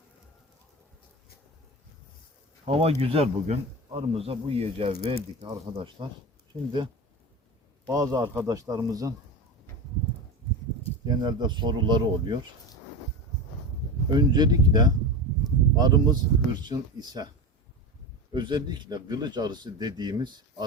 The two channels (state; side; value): normal; both; correlation 0.25